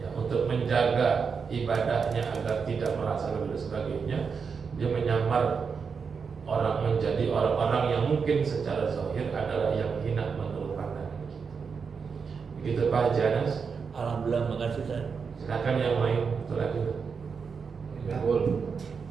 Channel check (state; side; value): quieter; left; 5.7 dB